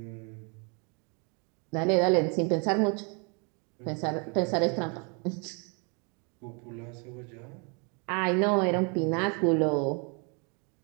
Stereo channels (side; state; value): left; quieter; 35.1 dB